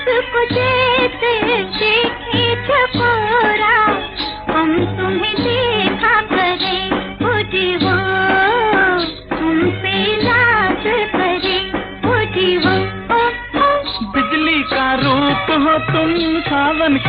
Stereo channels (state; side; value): identical; both; correlation 1.00